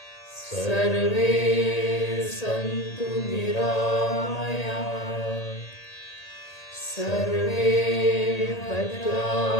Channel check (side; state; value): right; late; 1.8 ms